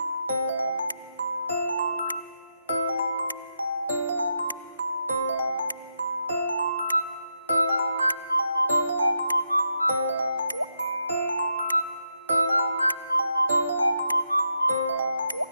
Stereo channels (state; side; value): inverted; both; correlation -0.83